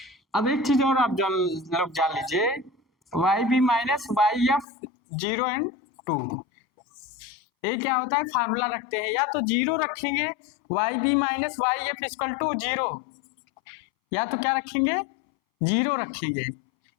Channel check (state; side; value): drops out; right; at 4.7 s